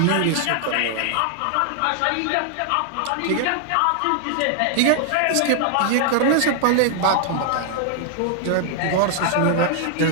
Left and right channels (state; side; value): different; both; correlation 0.00